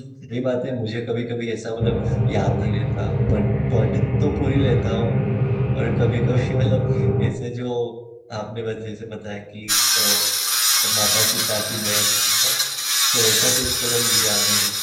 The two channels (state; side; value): identical; both; correlation 1.00